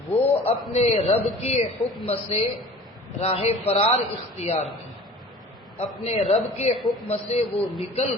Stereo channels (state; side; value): normal; both; correlation 0.43